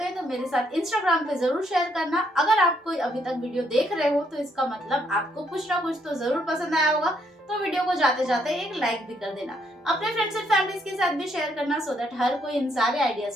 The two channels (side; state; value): both; normal; correlation 0.73